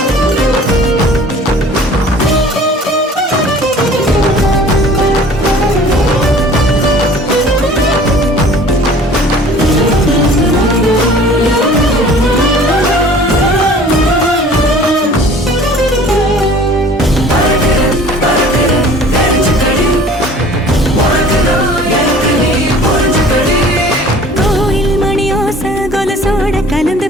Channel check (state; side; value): normal; both; correlation 0.48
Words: கோயில் மணியோச கொலசோட கலந்து